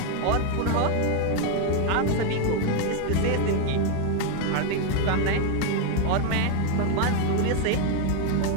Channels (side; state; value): both; different; correlation 0.01